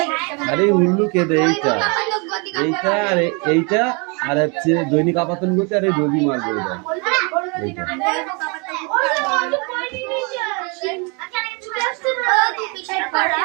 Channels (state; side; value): quieter; left; 32.5 dB